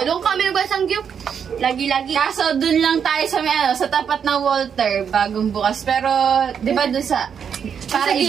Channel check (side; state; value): left; quieter; 7.4 dB